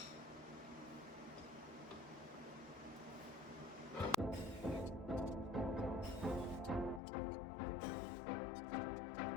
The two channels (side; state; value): right; drops out; at 7.0 s